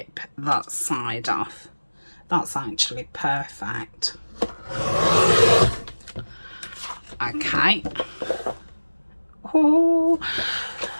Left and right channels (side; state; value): both; inverted; correlation -1.00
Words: that side off. That's actually perfect. Okay. Oh,